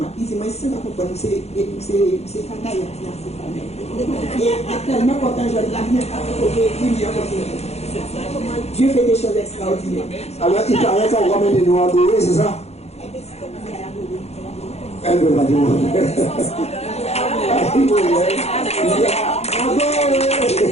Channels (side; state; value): right; late; 0.31 ms